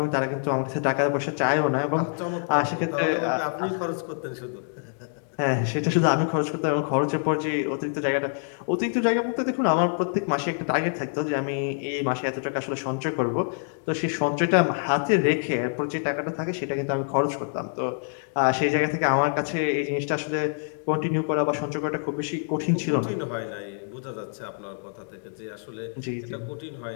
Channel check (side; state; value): right; silent; digital silence